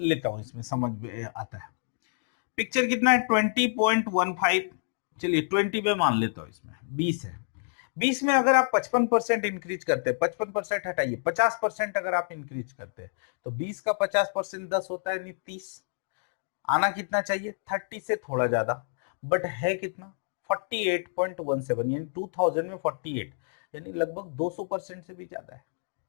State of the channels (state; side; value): silent; right; digital silence